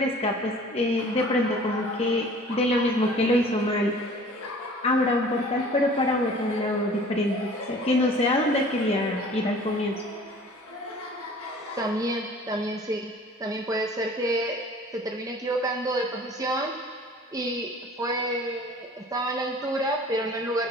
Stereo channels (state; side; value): normal; both; correlation 0.48